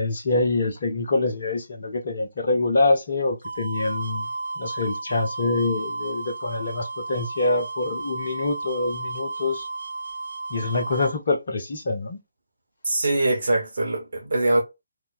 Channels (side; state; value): both; inverted; correlation -0.78